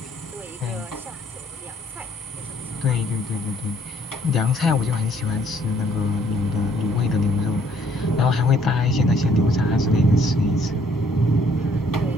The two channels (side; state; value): both; normal; correlation 0.64